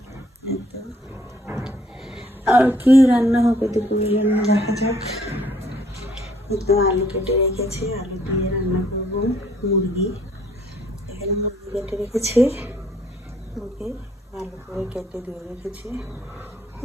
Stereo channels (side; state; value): both; normal; correlation 0.63